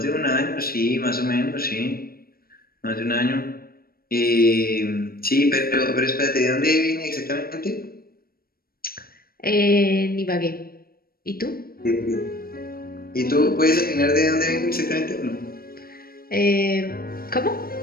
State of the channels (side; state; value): right; late; 0.43 ms